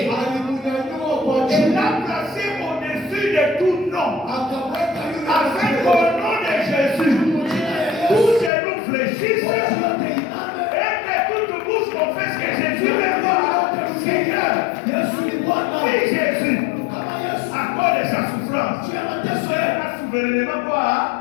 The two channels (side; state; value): right; drops out; at 8.5 s